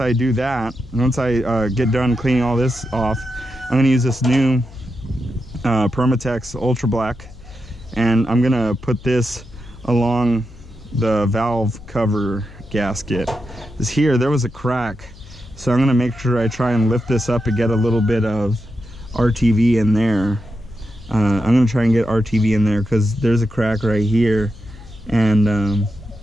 do that, once I get done cleaning all this off, I'm gonna use this new Permatex Ultra Black, and I'm gonna put this along the valve cover gasket. Because here there was a crack, so I'm gonna make sure I try and lift this up and get a little bit of RTV in there. I'm gonna try and get RTV in there because there's a crack right here, and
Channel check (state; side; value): noise; left; hum, 20 dB below the sound